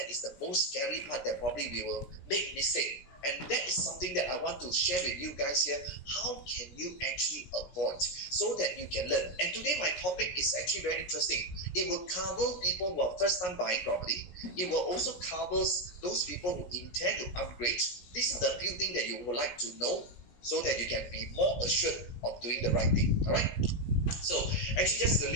is the most scary part that probably we will make mistake. And that is something that I want to share with you guys here. How can you actually avoid so that you can learn? And today my topic is actually very interesting. It will cover people who are first time buying property. It will also cover those people who intend to upgrade. These are the few things that you would like to know so that you can be more assured of doing the right thing. All right? So actually just a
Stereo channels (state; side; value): late; right; 17 ms